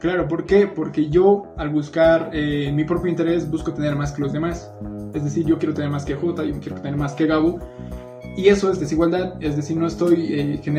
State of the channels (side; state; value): both; identical; correlation 1.00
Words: ¿por qué? Porque yo al buscar mi propio interés busco tener más que los demás. Es decir, yo quiero tener más que Jota, yo quiero tener más que Gabo. Y eso es desigualdad, es decir, no estoy